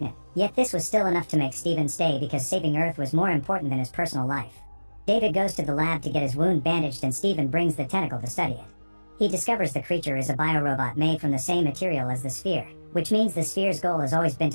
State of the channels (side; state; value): both; inverted; correlation -1.00